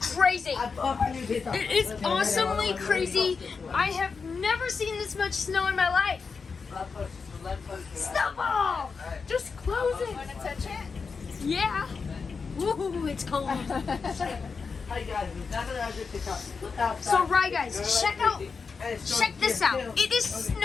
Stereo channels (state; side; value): quieter; right; 5.1 dB